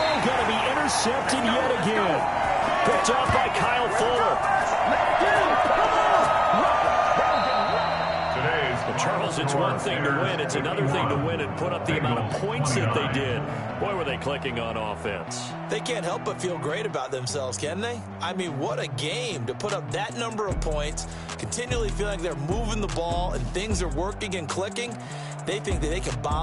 going to be intercepted yet again. Picked off by Kyle Fuller. Charles, it's one thing to win. It's another thing to win and put up the amount of points that they did. Boy, were they clicking on offense. They can't help but feel great about themselves, can they? I mean, what a game to put up that number of points, continually feel like they're moving the ball and things are working and clicking. They think that they can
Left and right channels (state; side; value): identical; both; correlation 1.00